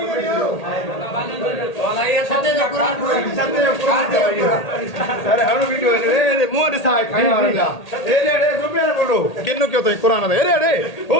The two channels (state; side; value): late; right; 1.8 ms